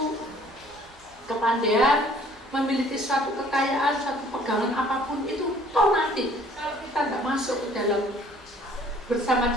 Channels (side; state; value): both; normal; correlation 0.56